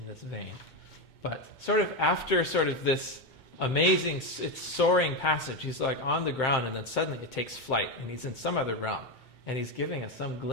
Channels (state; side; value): late; right; 2.2 ms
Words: vein. But sort of after sort of this amazing, it's soaring passage, he's like on the ground and then suddenly it takes flight and he's in some other realm and he's giving us some